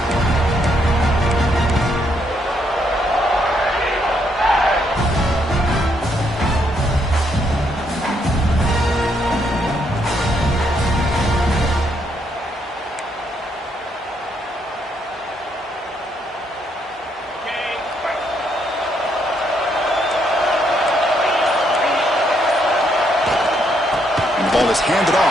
Ball is handed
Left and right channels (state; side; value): normal; both; correlation 0.74